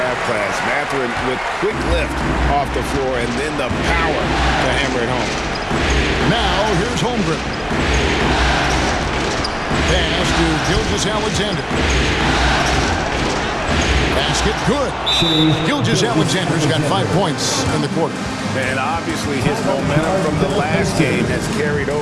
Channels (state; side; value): identical; both; correlation 1.00